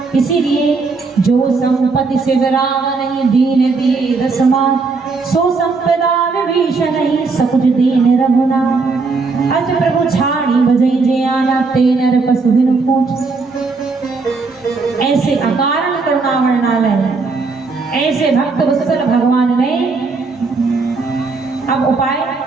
इसीलिए जो संपत्ति से विराम नहीं, दीन दिए दसमान, सो संपदा विभीषण नहीं, सकुच दीन रघुना। अस प्रभु छाड़ी बजई जे आना, ते नर पशु बिनु पूछ। ऐसे अकारण करुणा वर्णालय, ऐसे भक्त वत्सल भगवान ने अब उपाय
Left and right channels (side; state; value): left; quieter; 4.2 dB